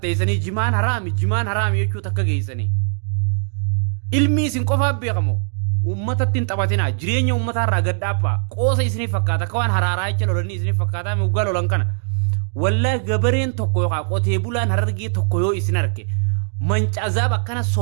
jimaan haraami jechuu takka geessanii ilmii isin qofaa beekamoo ummatatti hin taphatinaa jireenya ummataa irraa gadhaabbaa qoosa isinii fakkaata akka waan haraaraa jecha lolanii isinii fakkaataa muggaa lolan kana wallaahi gabareen tokko yookaan qotee bulaan harargee tokko yoo isin arge mancazaab akkana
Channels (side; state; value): left; silent; 65 dB below the other